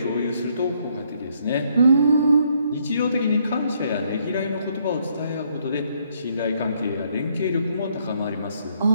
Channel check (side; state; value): both; inverted; correlation -0.70